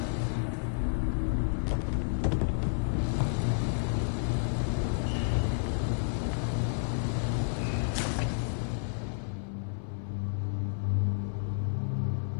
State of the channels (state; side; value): silent; right; 57 dB below the other